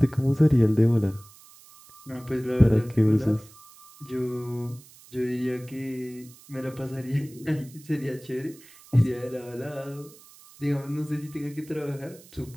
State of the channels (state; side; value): noise; right; hiss, 23 dB below the sound